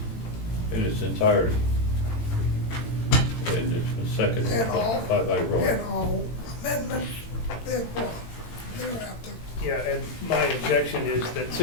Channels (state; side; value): late; right; 18 ms